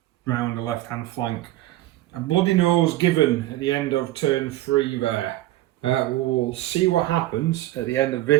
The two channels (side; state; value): left; quieter; 15.7 dB